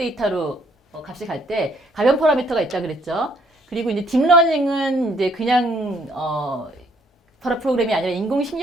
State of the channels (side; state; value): both; normal; correlation 0.65